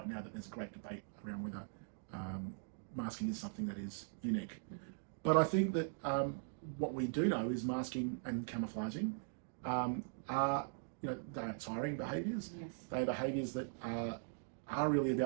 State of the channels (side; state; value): left; silent; digital silence